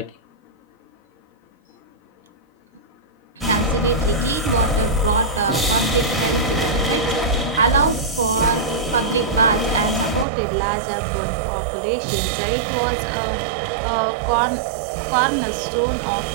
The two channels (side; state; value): left; drops out; at 10.2 s